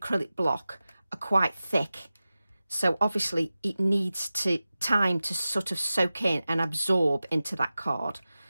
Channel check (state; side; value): inverted; both; correlation -0.95